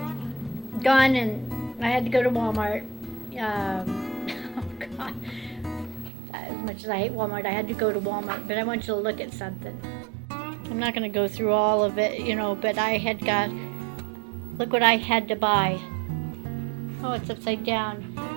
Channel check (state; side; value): drops out; left; at 6.1 s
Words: gone and I had to go to Walmart. Oh, God. As much as I hate Walmart, I had to go to Walmart, but I want you to look at something. I'm not going to go through all of it, you know, but I had got, look what I had to buy. Oh, it's upside down.